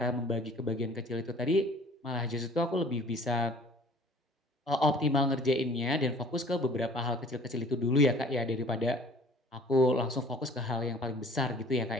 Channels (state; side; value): normal; both; correlation 0.50